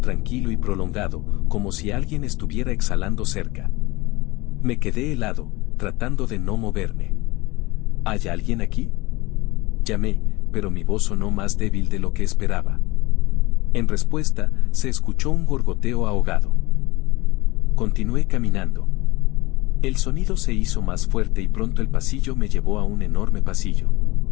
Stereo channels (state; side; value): quieter; right; 21.8 dB